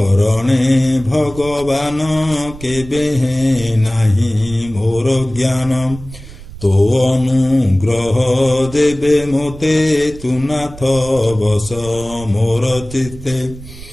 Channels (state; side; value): noise; right; rumble, 15 dB below the sound